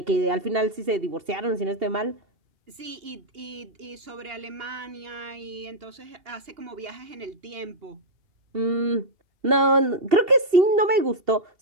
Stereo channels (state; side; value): late; left; 2.7 ms